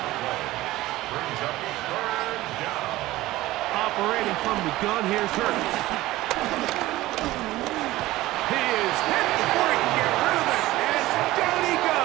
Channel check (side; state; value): left; quieter; 17.2 dB